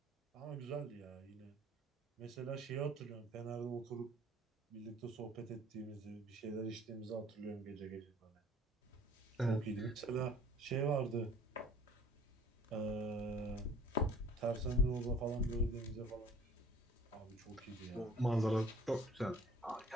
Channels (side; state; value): both; normal; correlation 0.50